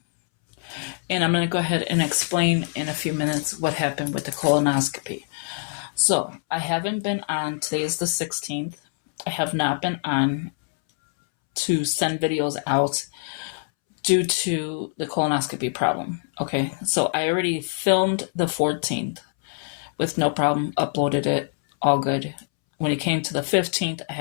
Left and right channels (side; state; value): right; silent; 62 dB below the other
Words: And I'm going to go ahead and explain in a few minutes what happened with the colonoscopy. So I haven't been on, today is the 16th. I have not been on to send videos out due to the colonoscopy problem. Okay, so I already filmed the 14th. With no problem, uploaded it, all good. When it came to the 15th, I